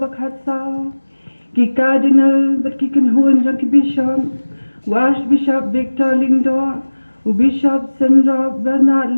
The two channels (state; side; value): inverted; both; correlation -1.00